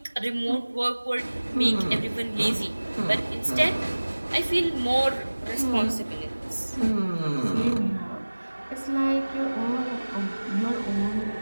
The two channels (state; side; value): inverted; both; correlation -1.00